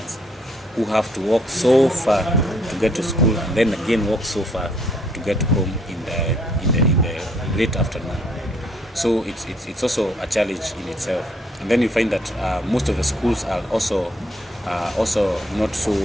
who have to walk so far to get to school, and then again walk so far to get home in the late afternoon. So it's also a challenge in itself. And then you find that most of the schools are also not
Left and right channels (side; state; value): both; normal; correlation 0.66